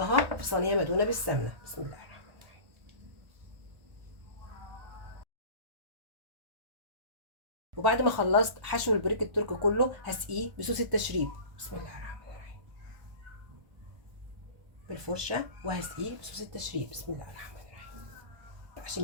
في صينيه مدهونه بالسمنه. بسم الله الرحمن الرحيم. وبعد ما خلصت حشو البريك التركي كله هسقيه بصوص التشريب. بسم الله الرحمن الرحيم. بالفرشه وهسقيه بصوص التشريب. بسم الله الرحمن الرحيم عشان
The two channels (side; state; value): left; late; 1.4 ms